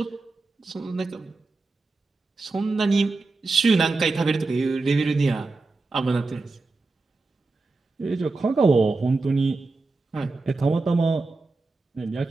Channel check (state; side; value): quieter; left; 3.6 dB